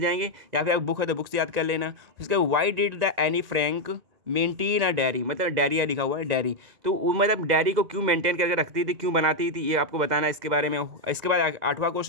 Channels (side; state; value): left; late; 2.0 ms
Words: या फिर आप बुक है तो बुक से याद कर लेना। उसके why did the Anne Frank maintain a diary, मतलब डायरिया लिखा हुआ है डायरी, तो वो मतलब डायरी को क्यों मेंटेन करके रखती थी, क्यों बनाती थी, ये आपको बताना है इसके बारे में। इसके बाद 8वां